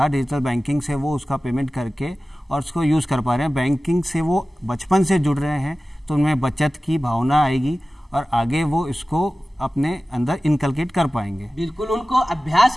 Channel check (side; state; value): both; normal; correlation 0.96